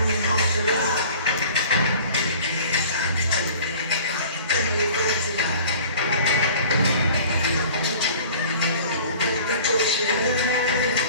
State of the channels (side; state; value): both; inverted; correlation -0.46